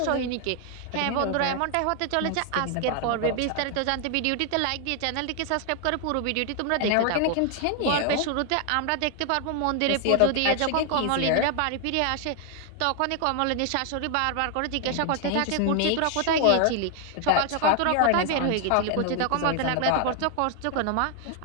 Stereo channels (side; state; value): both; different; correlation 0.00